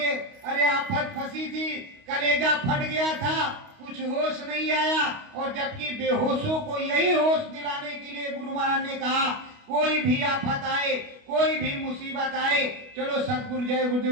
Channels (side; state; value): left; late; 28 ms